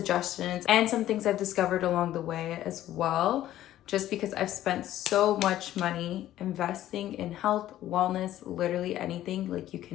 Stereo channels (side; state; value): right; quieter; 13.3 dB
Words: and some things I've discovered along the way as well, just because I've spent so much money investing in health, wellness, literally anything, like you